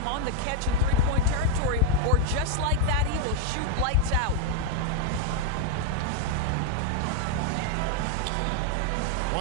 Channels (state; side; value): different; both; correlation 0.00